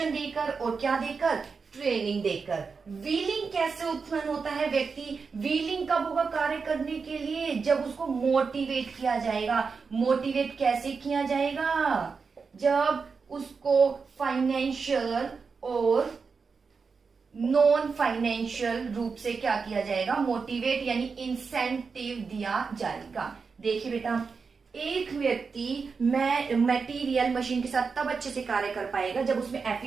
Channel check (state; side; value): quieter; left; 5.1 dB